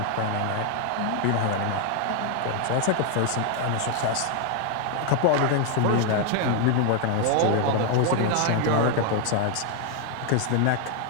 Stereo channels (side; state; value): both; different; correlation 0.00